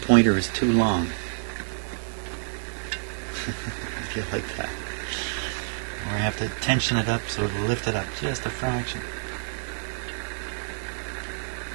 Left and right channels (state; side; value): silent; left; digital silence